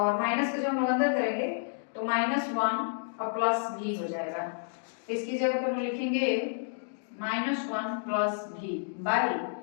माइनस को जब हम लोग अंदर करेंगे तो माइनस 1 और प्लस v हो जाएगा। तो इसकी जगह पर हम लिखेंगे minus 1 plus v by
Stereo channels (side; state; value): right; silent; digital silence